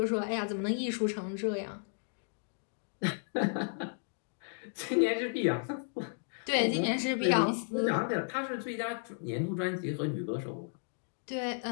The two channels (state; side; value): silent; right; digital silence